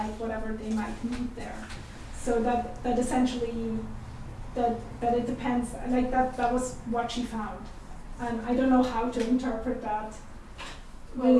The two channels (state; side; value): identical; both; correlation 1.00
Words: whatever they might need there. So that essentially that it depends, like that was what she found, and I don't know how to interpret that